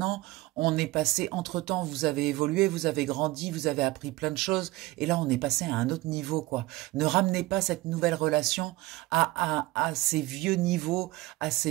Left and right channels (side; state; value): left; quieter; 19.6 dB